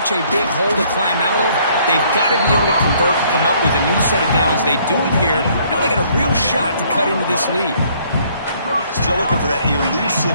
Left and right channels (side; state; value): both; inverted; correlation -0.63